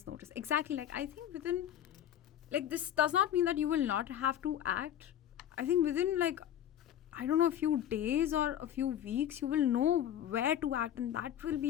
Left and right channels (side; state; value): right; quieter; 10.7 dB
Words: notice. Exactly. Like, I think within, like, this does not mean that you will not have to act. I think within, like, I don't know, a few days or a few weeks, you will know where to act, and that will be